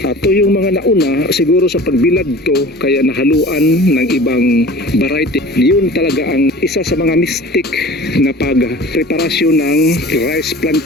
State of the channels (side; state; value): both; normal; correlation 0.41